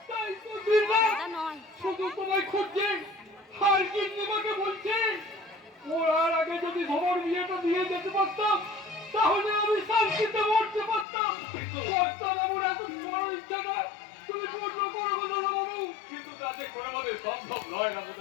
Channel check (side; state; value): right; drops out; at 11.1 s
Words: তাই তো দিনরাত দাদা নয়। শুধু তোমায় খুঁজছে, আর গিন্নিমাকে বলছে ওর আগে যদি ধর বিয়েটা দিয়ে যেতে পারতাম তাহলে আমি শান্তিতে মরতে পারতাম। কর্তা বাবুর এত বড় ইচ্ছা না, তুমি পূর্ণ করো গো দাদা বাবু। কিন্তু কাজে করে আমাদের সম্ভব নয়